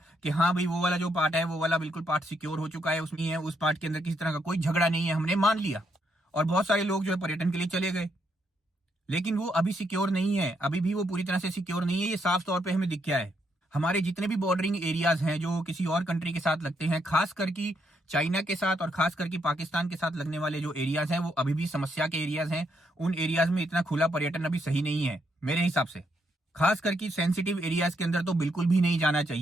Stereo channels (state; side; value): normal; both; correlation 0.76